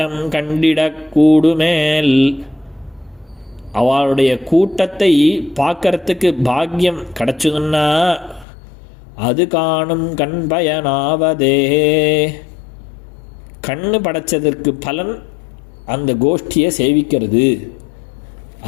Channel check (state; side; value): drops out; right; at 8.5 s